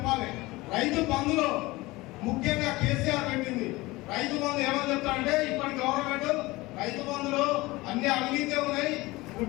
రైతు బంధులో ముఖ్యంగా కేసీఆర్ పెట్టింది. రైతు బంధు ఏమని చెప్తారంటే ఇప్పటి గవర్నమెంట్ రైతు బంధులో అన్ని అవినీతి ఉన్నాయి.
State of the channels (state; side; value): quieter; right; 20.9 dB